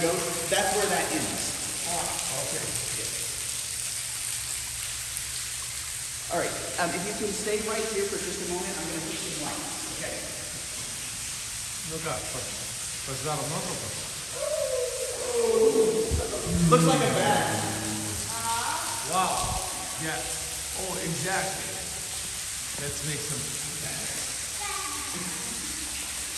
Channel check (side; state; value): both; identical; correlation 1.00